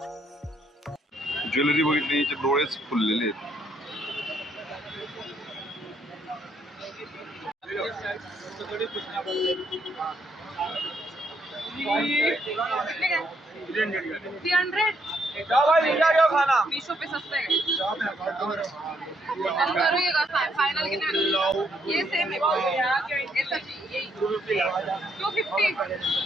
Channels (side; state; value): both; normal; correlation 0.73